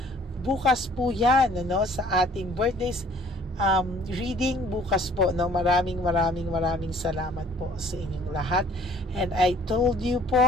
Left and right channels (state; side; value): normal; both; correlation 0.55